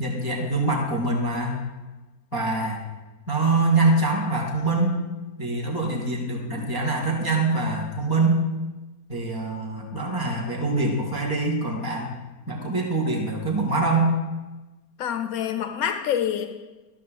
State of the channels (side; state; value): right; late; 4.3 ms